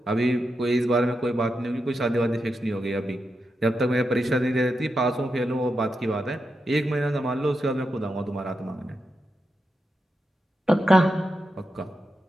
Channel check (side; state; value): both; normal; correlation 0.87